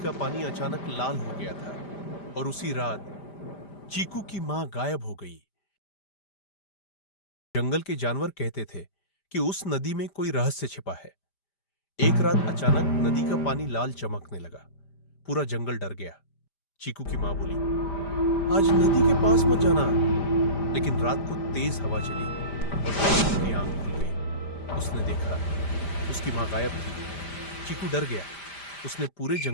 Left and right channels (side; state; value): right; late; 5.0 ms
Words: का पानी अचानक लाल हो गया था और उसी रात चीकू की मां गायब हो गई। जंगल के जानवर कहते थे कि उस नदी में कोई रहस्य छिपा है। एक रात अचानक नदी का पानी लाल चमकने लगा। पूरा जंगल डर गया। चीकू की मां बोली, आज नदी के पास मत जाना। लेकिन रात को तेज हवा चली और चीकू की आंख खुल गई। उसने देखा उसकी मां गायब थी। चीकू डर गया। उसने पूरे